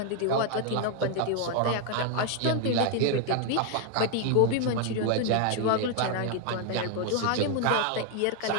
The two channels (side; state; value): both; different; correlation 0.00